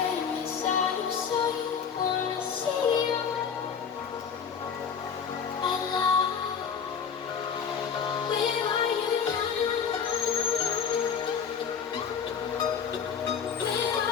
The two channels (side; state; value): right; quieter; 6.9 dB